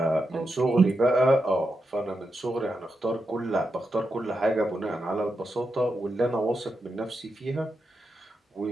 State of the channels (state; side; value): normal; both; correlation 0.86